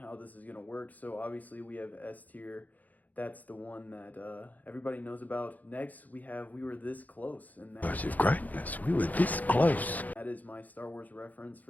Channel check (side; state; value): right; late; 0.080 ms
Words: this is going to work. So obviously we have S tier. That's the one that everybody knows about. Next, we were this close. And Of greatness, we were this close. That is my Star Wars reference